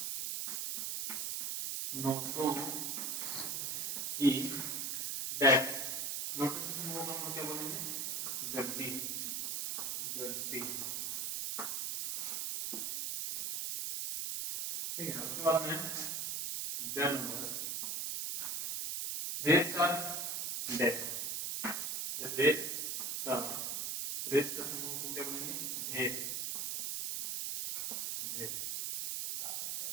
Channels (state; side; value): noise; right; hiss, 1 dB below the sound